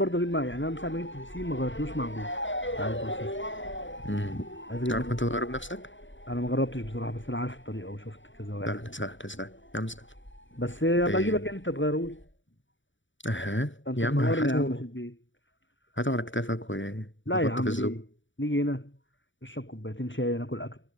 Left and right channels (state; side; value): late; right; 0.55 ms